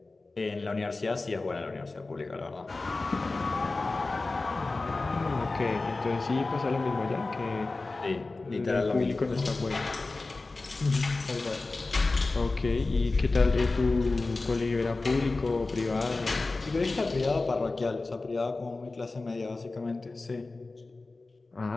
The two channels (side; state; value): right; quieter; 3.4 dB